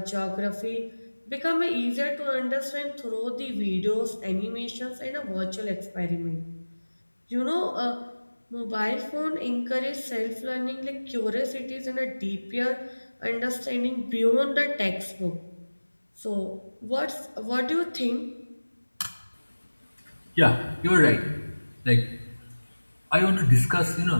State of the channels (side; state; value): both; inverted; correlation -1.00